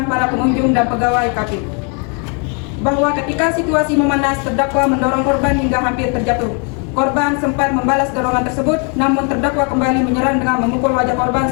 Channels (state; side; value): quieter; right; 37.3 dB